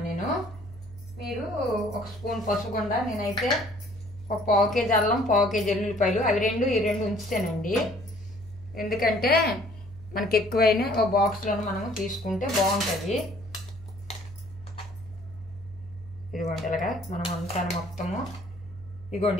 నేను. మీరు 1 స్పూన్ పసుపుగుండ, నేనైతే 1 పావు కేజీ అల్లం, పావు కేజీ ఎల్లుల్లిపాయలు, అవి ఈ రెండు ఉంచుతానండి. ఎందుకంటే మనకి ఎక్కువైనా ఓ బాక్స్లో మనము తీసుకుంటే బాగుంటుంది. ఇదిగోండి ఇలాగా మనం అంతా మొత్తము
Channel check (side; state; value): right; noise; hum, 17 dB below the sound